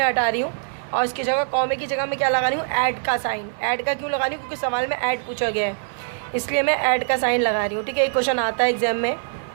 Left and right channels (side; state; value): left; silent; 57 dB below the other